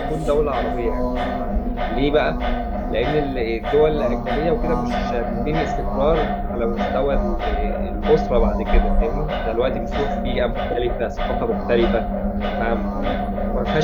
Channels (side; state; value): both; identical; correlation 1.00